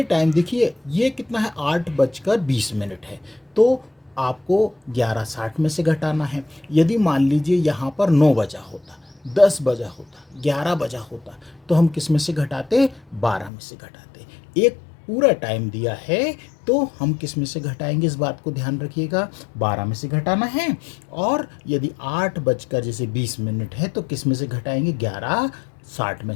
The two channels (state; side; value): drops out; right; at 13.5 s